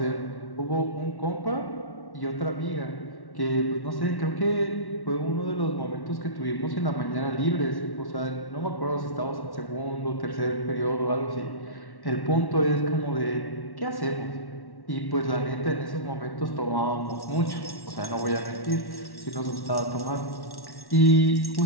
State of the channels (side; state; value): right; late; 1.1 ms